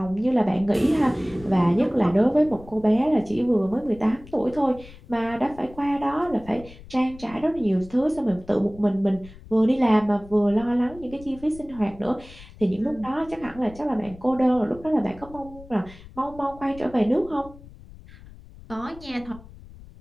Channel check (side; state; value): left; noise; rumble, 19 dB below the sound